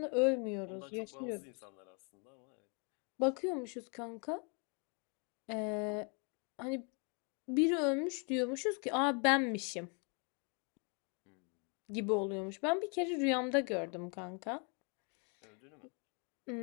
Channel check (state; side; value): quieter; right; 36.9 dB